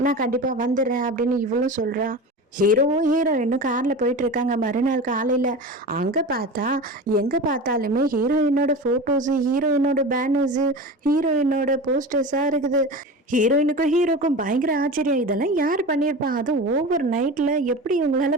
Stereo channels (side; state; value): both; normal; correlation 0.30